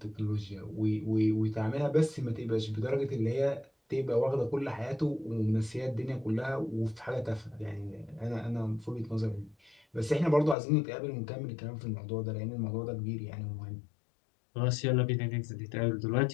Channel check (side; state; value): right; drops out; at 10.6 s